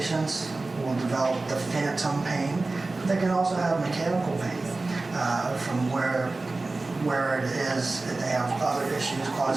will develop the phantom pain, but they can also have mechanical pain from where it is. If they have other issues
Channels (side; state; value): left; quieter; 3.3 dB